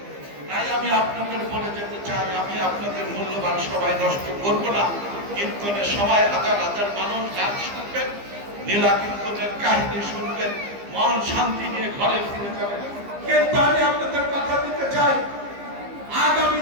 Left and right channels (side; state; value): left; late; 15 ms